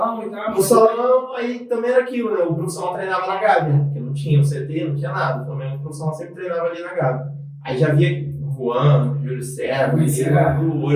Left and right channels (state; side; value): identical; both; correlation 1.00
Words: e tal? No salão, aí também era aquilo, né? O profissional treinava na Gávea, porque não tinha o CT, não tinha nada. O Flamengo, o profissional sempre treinava ali na Gávea. Aí já via o Juan, o Júlio César, o